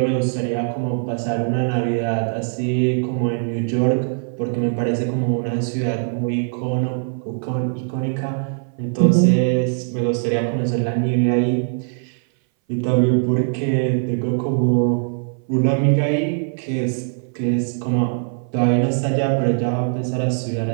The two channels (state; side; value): silent; left; 61 dB below the other